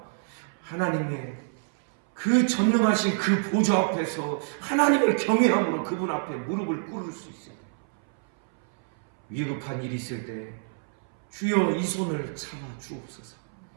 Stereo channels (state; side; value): silent; left; 60 dB below the other